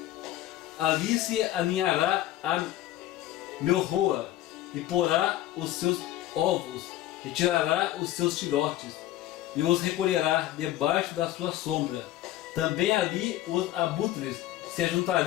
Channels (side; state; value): right; quieter; 14.2 dB